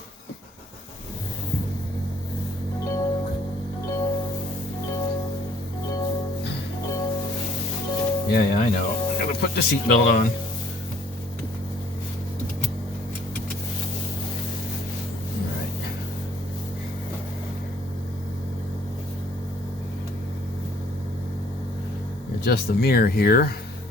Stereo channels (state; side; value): normal; both; correlation 0.60